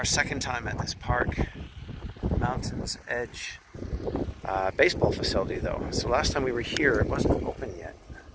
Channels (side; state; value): both; identical; correlation 1.00